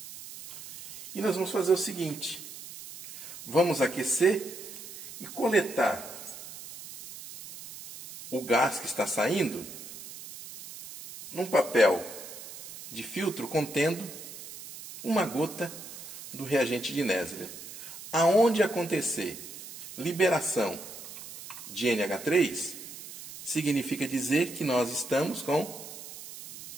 E nós vamos fazer o seguinte: vamos aquecer e coletar o gás que está saindo num papel de filtro contendo uma gota do reagente de Nessler. Aonde acontecer liberação de NH3, significa dizer que nós estamos com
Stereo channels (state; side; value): noise; right; hiss, 13 dB below the sound